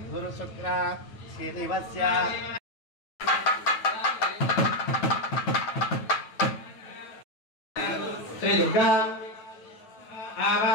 గురు శుక్ర శ్రీనివస్య శ్రీ దుర్గా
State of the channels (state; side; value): late; right; 9.2 ms